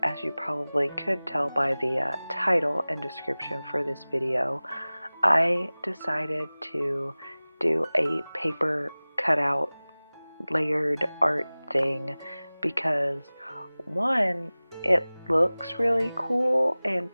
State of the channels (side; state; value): both; inverted; correlation -0.99